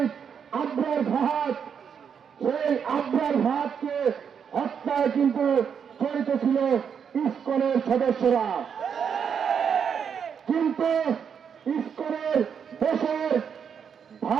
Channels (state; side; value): quieter; left; 7.3 dB